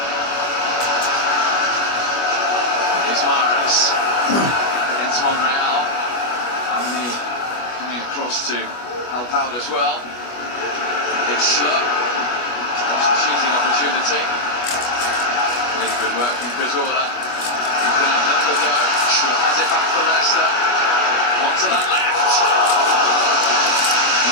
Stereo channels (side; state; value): right; late; 25 ms